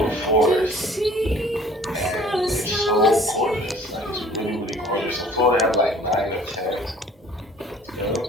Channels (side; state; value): both; normal; correlation 0.52